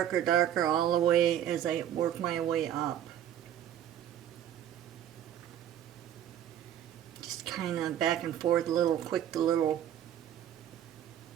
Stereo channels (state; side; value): quieter; left; 10.7 dB